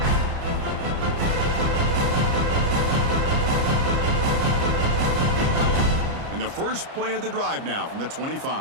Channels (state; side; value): late; left; 30 ms